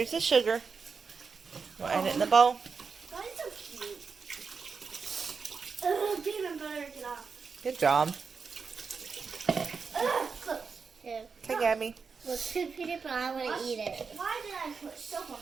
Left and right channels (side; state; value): left; quieter; 5.3 dB